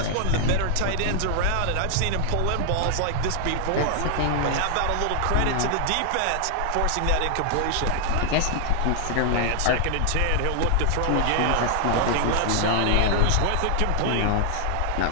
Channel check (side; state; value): both; different; correlation 0.00